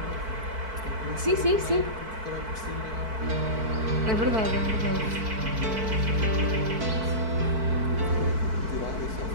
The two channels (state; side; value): late; left; 4.5 ms